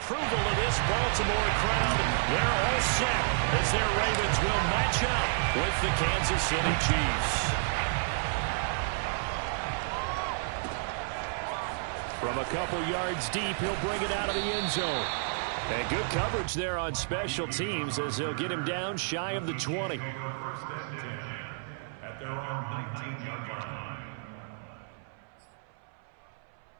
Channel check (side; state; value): left; silent; 57 dB below the other